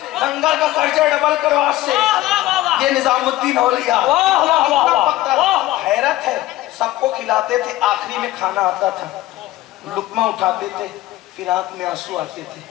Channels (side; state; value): right; quieter; 16.2 dB